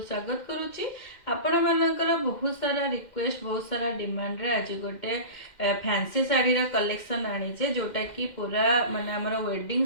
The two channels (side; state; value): right; late; 2.1 ms